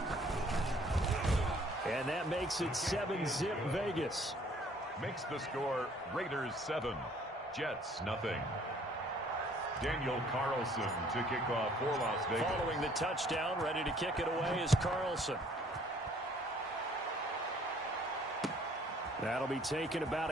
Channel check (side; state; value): both; normal; correlation 0.59